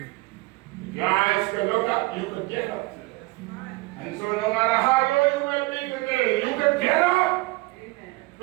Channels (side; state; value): left; quieter; 23.1 dB